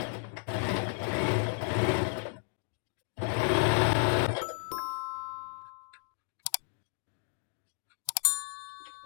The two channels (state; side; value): silent; right; digital silence